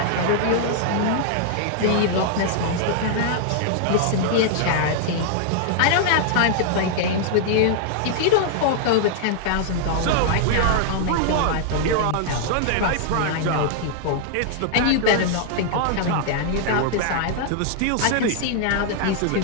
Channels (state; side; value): different; both; correlation -0.01